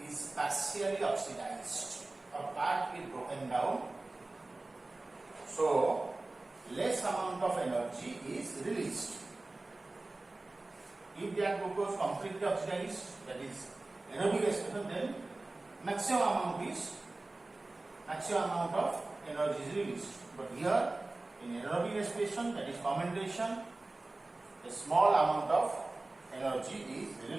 is partially oxidized. A part is broken down, so less amount of energy is released. If that glucose completely oxidized, that is anaerobic respiration, then maximum amount of energy is released. But here in anaerobic respiration, that is fermentation, a small amount of energy is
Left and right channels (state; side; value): quieter; left; 3.0 dB